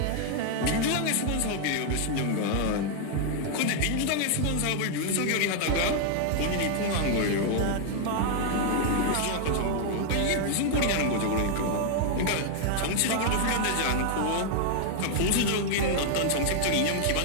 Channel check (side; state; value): both; different; correlation 0.00